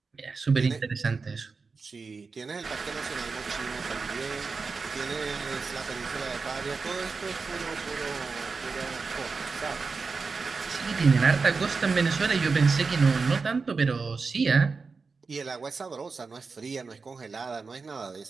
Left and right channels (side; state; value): left; quieter; 4.6 dB